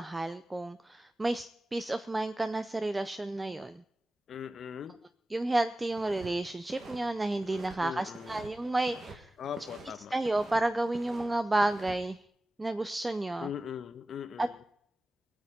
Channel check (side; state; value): both; normal; correlation 0.95